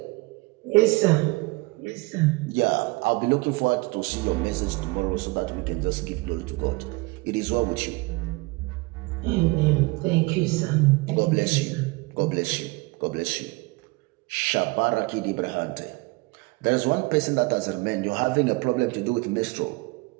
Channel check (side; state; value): left; quieter; 25.3 dB